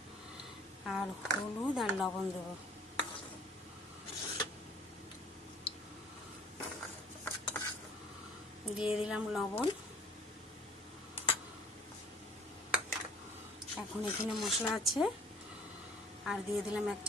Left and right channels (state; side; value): normal; both; correlation 0.54